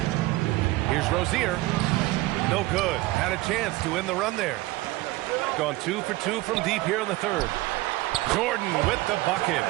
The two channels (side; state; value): left; quieter; 19.5 dB